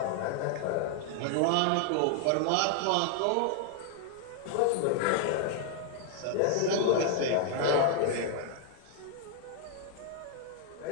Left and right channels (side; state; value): both; different; correlation 0.00